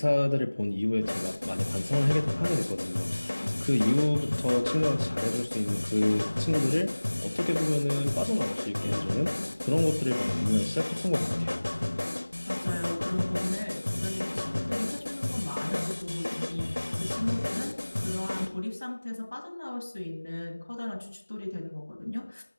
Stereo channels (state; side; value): inverted; both; correlation -1.00